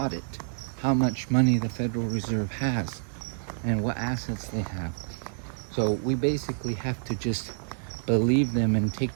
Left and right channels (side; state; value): left; silent; 59 dB below the other